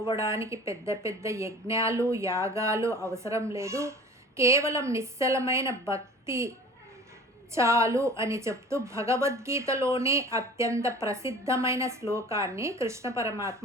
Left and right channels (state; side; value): normal; both; correlation 0.43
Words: పెద్ద పెద్ద యజ్ఞాలు, యాగాలు అవసరం లేదు. కేవలం నిశ్చలమైన భక్తి చాలు అని చెప్తూ భగవద్గీతలోనే అత్యంత ప్రసిద్ధమైన శ్లోకాన్ని కృష్ణ